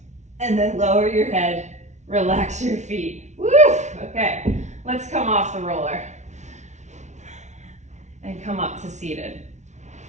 And then lower your head, relax your feet. Woo! off the roller and come up to seated.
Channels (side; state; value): left; late; 0.33 ms